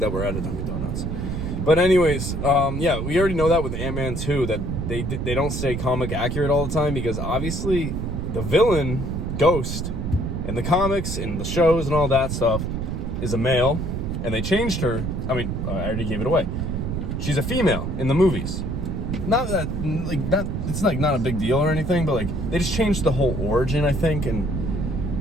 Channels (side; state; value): right; noise; rumble, 3 dB below the sound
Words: we're at a Dunkin' Donuts. But anyways, yeah, we already know that with Ant-Man 2 that they don't stay comic accurate all the time because obviously the villain Ghost in the comics and the shows and all that stuff is a male, and they changed her. I mean, I already gave it away. She's a female in the movies. not that it's like not a big deal or anything, but like they just changed the whole origin, I think,